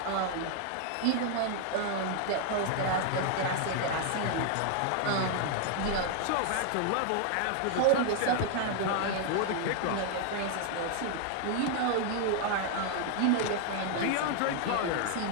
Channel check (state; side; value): different; both; correlation 0.00